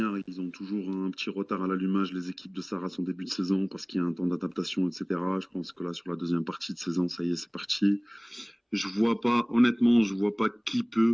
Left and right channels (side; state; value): both; identical; correlation 1.00